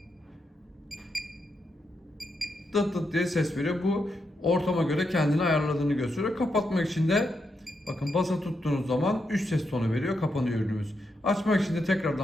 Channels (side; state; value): both; normal; correlation 0.83